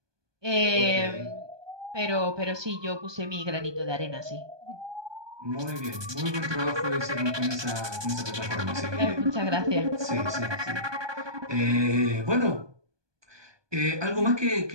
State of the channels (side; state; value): left; late; 1.2 ms